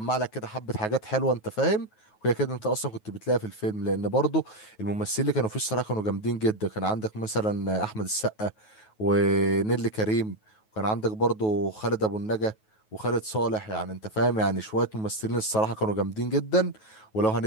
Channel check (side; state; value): right; late; 9.3 ms